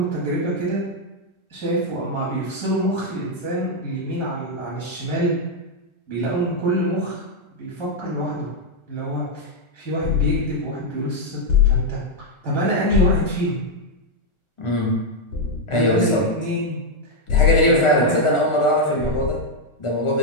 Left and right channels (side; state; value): right; late; 1.4 ms